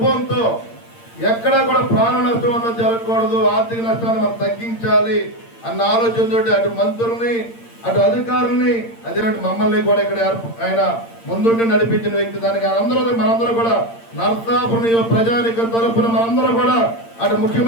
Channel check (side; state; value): right; late; 8.7 ms